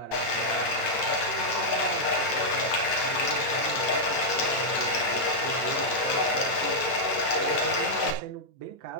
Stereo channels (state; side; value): late; right; 9.0 ms